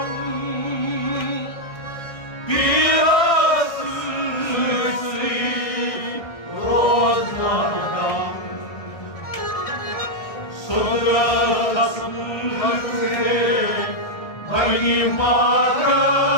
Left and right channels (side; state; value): right; late; 1.6 ms